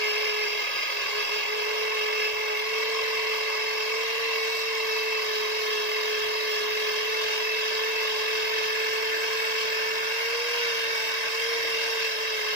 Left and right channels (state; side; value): late; right; 1.9 ms